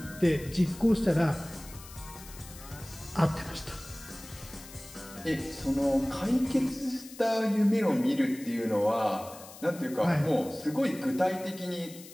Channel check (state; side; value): noise; left; hiss, 17 dB below the sound